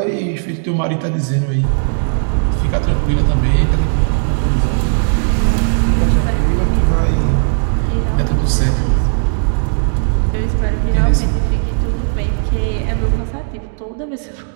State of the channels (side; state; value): left; silent; digital silence